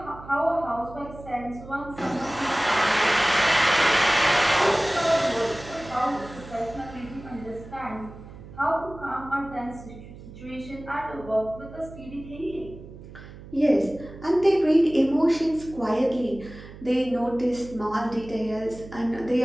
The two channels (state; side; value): noise; right; hum, 16 dB below the sound